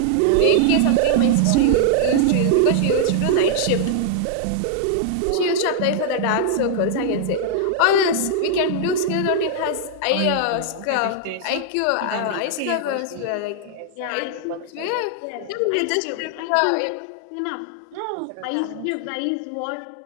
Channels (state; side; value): different; both; correlation 0.00